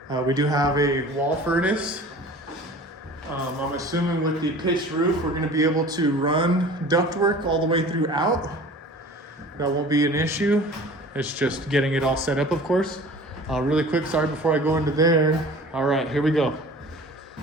We do have a wall furnace. I'm assuming with the pitched roof, we're gonna be able to run ductwork all the way throughout. That won't be an issue. It's just getting it all set up, of course. Really quick, sorry, before I go into there. All right, here we go.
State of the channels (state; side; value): normal; both; correlation 0.43